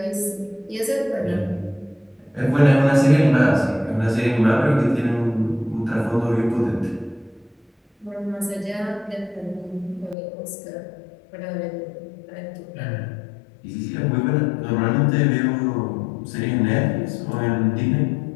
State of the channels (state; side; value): drops out; right; at 10.2 s